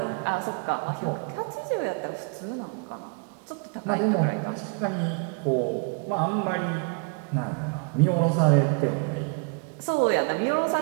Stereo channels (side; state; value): left; quieter; 36.9 dB